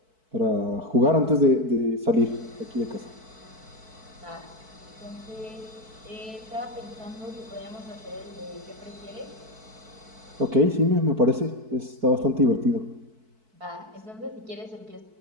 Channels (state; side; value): late; left; 4.6 ms